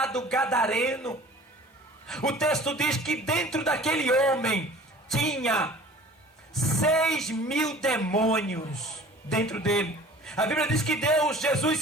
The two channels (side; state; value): both; normal; correlation 0.46